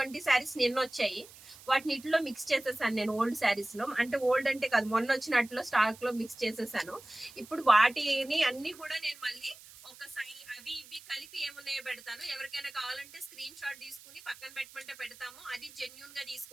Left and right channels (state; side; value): noise; right; hiss, 20 dB below the sound